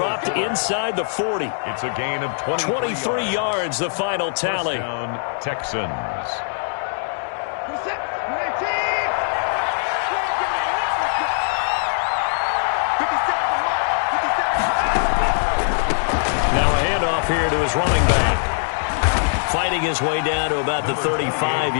inside the 40. It's a gain of 23 yards, the final tally. First down, Texans. Now a handoff here to his running back. Fighting his way down to about the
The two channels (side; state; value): right; silent; digital silence